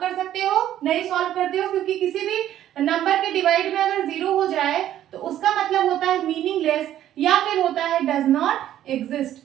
सकते हो? नहीं सॉल्व करते हो, क्योंकि किसी भी नंबर के डिवाइड में अगर 0 हो जाए तो उसका मतलब होता है मीनिंगलेस या फिर होता है डज नॉट एग्जिस्ट।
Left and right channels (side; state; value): left; quieter; 11.9 dB